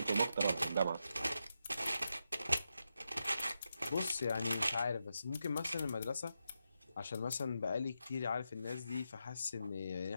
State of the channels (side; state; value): both; inverted; correlation -0.86